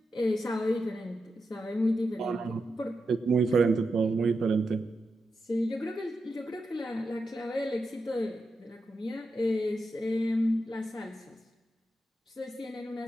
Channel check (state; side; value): normal; both; correlation 0.88